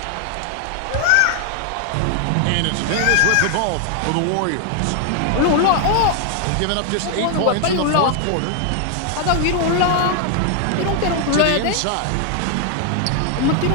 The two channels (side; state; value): both; different; correlation 0.00